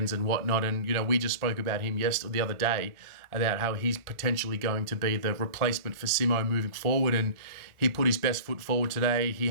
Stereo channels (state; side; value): late; left; 1.4 ms